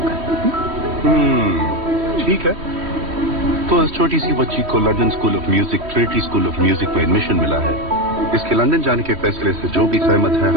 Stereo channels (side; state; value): left; late; 3.1 ms